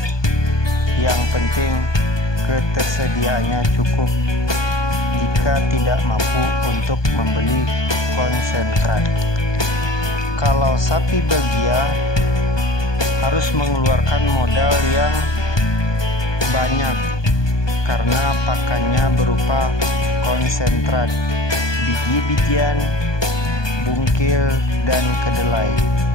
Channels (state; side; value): late; right; 1.2 ms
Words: Yang penting ketersediaannya cukup. Jika tidak mampu untuk membeli konsentrat. Kalau sapi Belgia harus mengeluarkan modal yang banyak karena pakannya berupa konsentrat, biji-bijian, bungkil, dan kedelai.